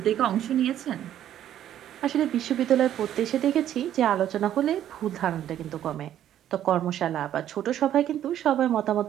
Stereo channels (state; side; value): quieter; left; 11.2 dB